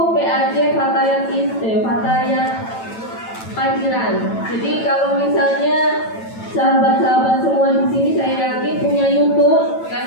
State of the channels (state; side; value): late; right; 9.0 ms